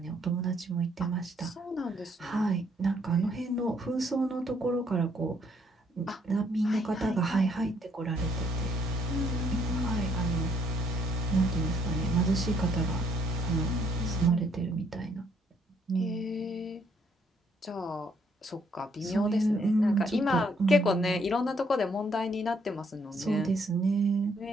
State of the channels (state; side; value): normal; both; correlation 0.69